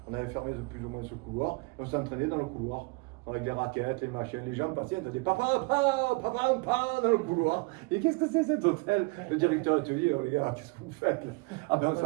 On avait fermé plus ou moins ce couloir et on s'entraînait dans le couloir avec les raquettes, les machines. Les gens passaient, on faisait papa, papa, papa, papa dans le couloir. Et qu'est-ce que c'est cet hôtel? Le directeur te dit, oh les gars, qu'est-ce que vous faites là? Ah ben on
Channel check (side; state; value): left; quieter; 28.3 dB